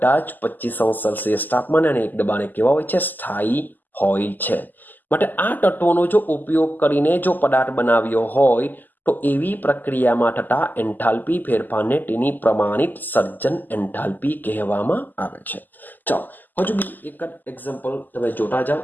જ 25°C તાપમાને અને એક દબાણે કેવા હોય છે? સ્થાયી હોય છે. માટે આ તત્વોનો જો ઉપયોગ કરીને જો પદાર્થ બનાવ્યો હોય તો એવી પ્રક્રિયામાં થતા એન્થાલ્પી ફેરફારને તેની પ્રમાણિત સર્જન એન્થાલ્પી કહેવામાં આવે છે. ચાલો હજુ બી એક જ એક્ઝામ્પલ તમે જોતા જાઓ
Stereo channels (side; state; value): right; late; 0.086 ms